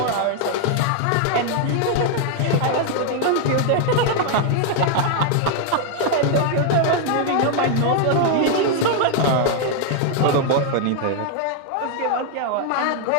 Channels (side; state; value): both; different; correlation 0.00